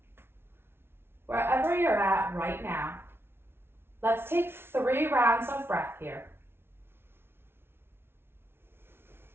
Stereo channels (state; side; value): late; left; 0.12 ms